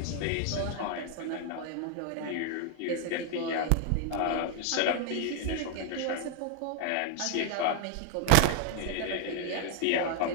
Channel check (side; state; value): both; different; correlation 0.00